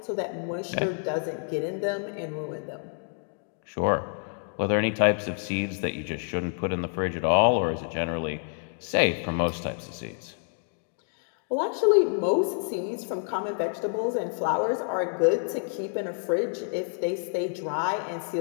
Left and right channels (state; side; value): silent; right; digital silence